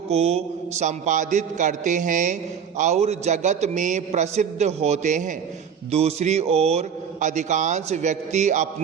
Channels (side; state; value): left; quieter; 7.5 dB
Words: को संपादित करते हैं और जगत में प्रसिद्ध होते हैं। दूसरी ओर अधिकांश व्यक्ति